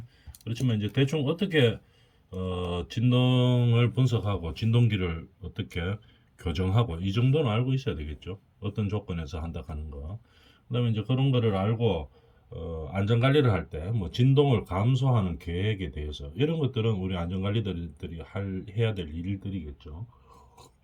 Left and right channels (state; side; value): identical; both; correlation 1.00